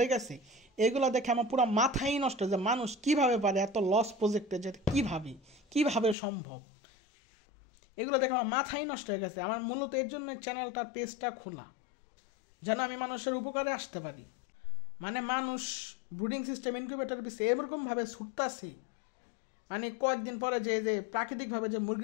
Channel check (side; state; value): right; drops out; at 6.2 s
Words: গেছে। এগুলো দেখে আমার পুরো মাথাই নষ্ট, যে মানুষ কিভাবে পারে এত লস প্রজেক্টে যেতে, কিভাবে সম্ভব। এগুলো দেখে আমার মাথাই নষ্ট হয়ে গেছে। আমার মূলত এর জন্য চ্যানেলটার পেজটা খোলা, যেন আমি মানুষের উপকারে আসতে পারি। মানে মানুষ ব্রুডিং সিস্টেম, ইনকিউবেটর পিছিয়ে এরকমভাবে ছুটতাছে, মানে কয়েকদিন পরে যে প্রাকৃতিকভাবে যে